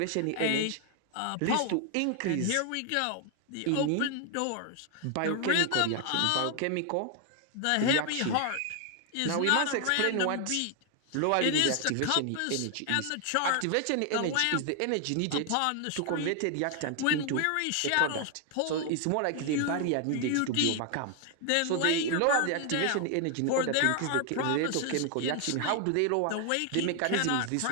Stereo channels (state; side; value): different; both; correlation 0.00